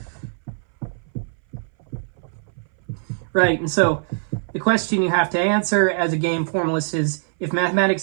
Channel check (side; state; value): left; silent; 61 dB below the other